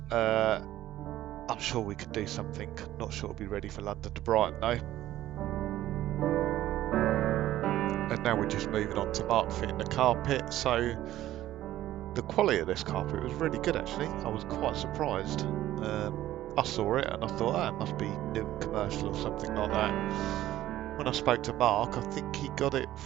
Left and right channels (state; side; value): quieter; left; 14.0 dB